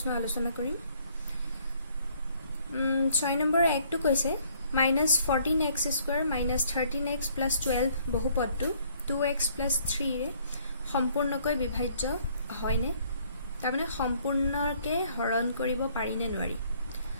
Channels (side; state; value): both; inverted; correlation -0.63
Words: আলোচনা কৰিম। 6 নম্বৰৰ একটো কৈছে -14x² - 13x + 12 বহুপদটো 2x + 3 ৰে সম্পূৰ্ণকৈ বিভাজ্য হয়নে? তাৰমানে সম্পূৰ্ণকে হৰণ কৰিব পাৰি নে নোৱাৰি?